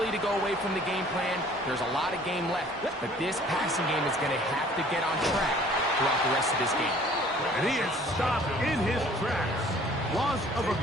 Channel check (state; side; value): normal; both; correlation 0.53